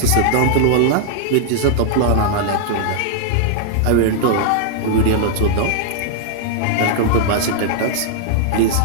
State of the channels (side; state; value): both; different; correlation 0.00